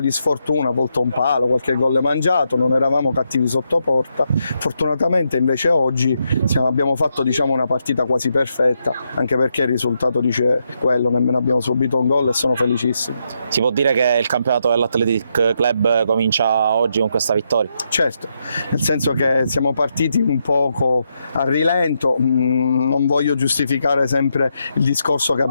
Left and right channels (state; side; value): inverted; both; correlation -0.81